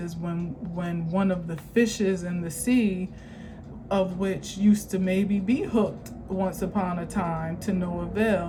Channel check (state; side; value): identical; both; correlation 1.00